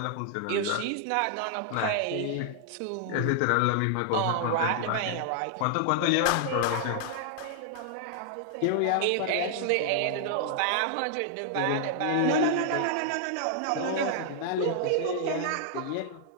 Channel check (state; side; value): different; both; correlation -0.01